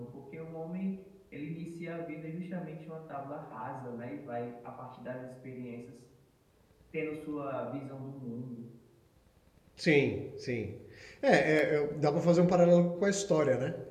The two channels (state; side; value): identical; both; correlation 1.00